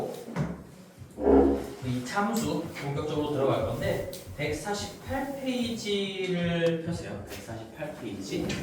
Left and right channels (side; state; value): both; identical; correlation 1.00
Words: 이 참수 본격적으로 들어갈 건데 148페이지를 펴세요. 148페이지.